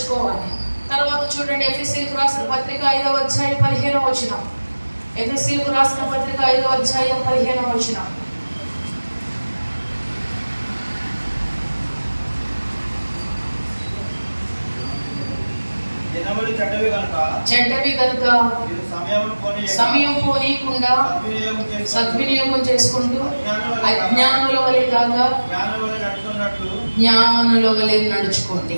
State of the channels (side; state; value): both; inverted; correlation -1.00